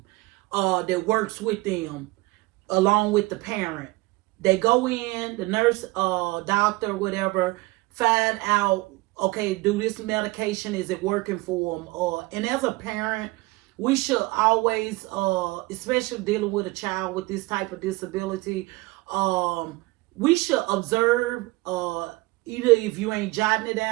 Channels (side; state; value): left; quieter; 22.0 dB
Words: that works with them along with the parent. They go in, the nurse, doctor, whatever, find out, okay, do this medication, is it working for them? And as a parent, we should always, especially dealing with a child with this type of disability, we should observe, either if you ain't jotting it